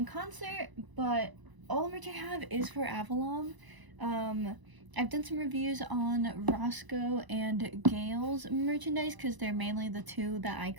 concert, but all the merch I have is for Avallum. I've done some reviews on Roscoe and Gale's merchandise because they're mainly the two that I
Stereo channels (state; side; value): late; left; 1.0 ms